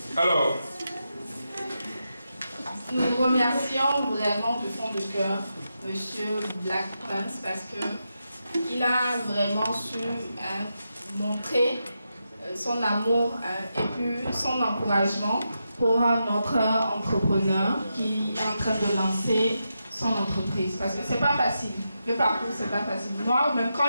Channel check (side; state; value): both; inverted; correlation -0.87